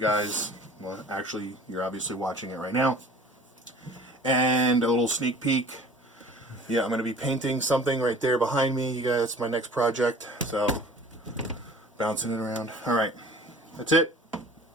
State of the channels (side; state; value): both; normal; correlation 0.46